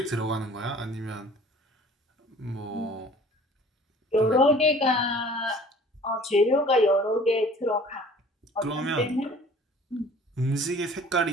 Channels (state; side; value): normal; both; correlation 0.49